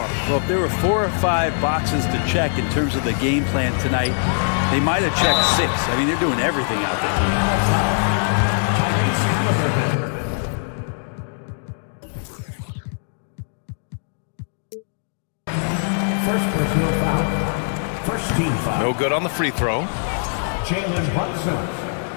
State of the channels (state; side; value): silent; right; digital silence